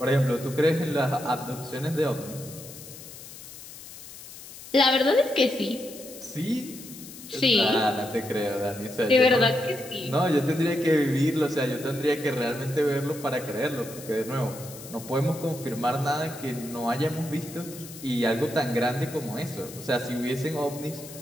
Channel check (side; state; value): left; noise; hiss, 15 dB below the sound